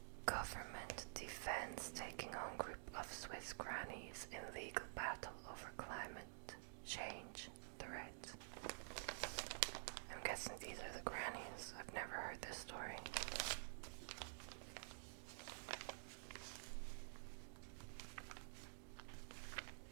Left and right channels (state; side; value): silent; left; digital silence